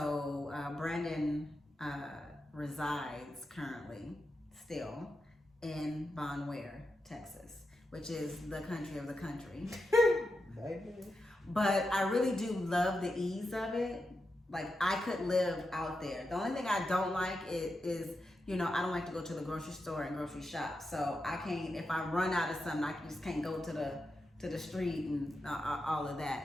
Brandon resides currently still in Von Ware, Texas, which is the country of the country. But I really do love the ease of it. Like, I could live out there. The only thing I don't like is I don't like to go to the grocery store and grocery shop. So I can't, if I run out of something, I just can't go to the street and all of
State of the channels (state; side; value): normal; both; correlation 0.88